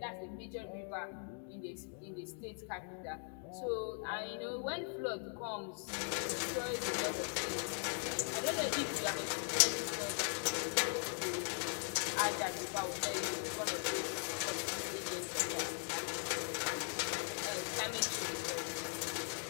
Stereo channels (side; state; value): right; silent; 51 dB below the other